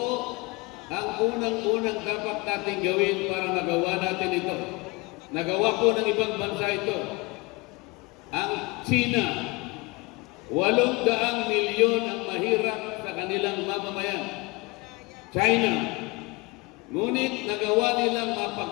ang unang-unang dapat natin gawin para magawa natin ito? Nagawa po ng ibang bansa ito. Ang China, 800 milyon ang mahirap sa kanilang mamamayan. China, ngunit nagawa nilang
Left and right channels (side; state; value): right; quieter; 25.3 dB